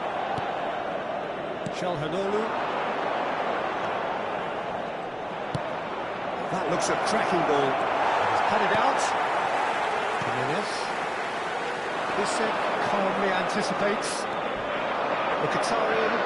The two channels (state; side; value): identical; both; correlation 1.00